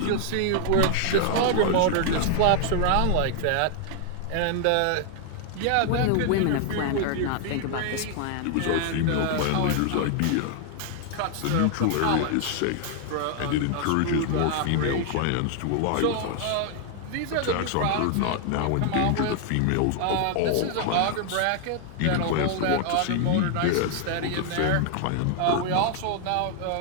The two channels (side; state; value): both; different; correlation 0.00